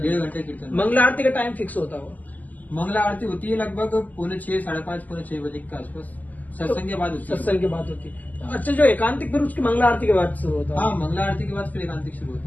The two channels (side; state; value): right; late; 0.080 ms